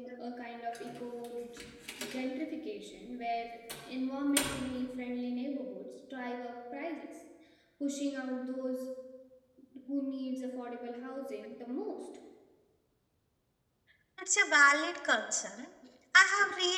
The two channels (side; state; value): both; identical; correlation 1.00